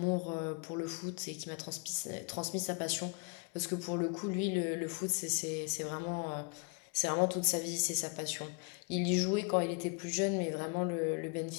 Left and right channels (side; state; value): right; quieter; 36.3 dB